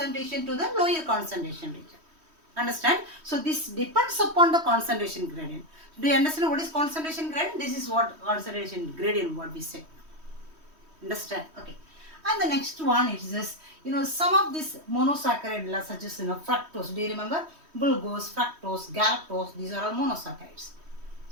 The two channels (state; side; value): late; left; 3.1 ms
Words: to the lower concentration region. Understand? So this depends upon the concentration gradient. Do you understand what is concentration gradient? This is what concentration gradient what we say. Understand? Okay. And the next one is this, some of this monosaccharide such as fructose. Do you remember? Glucose, fructose, galactose, these are all monosaccharides.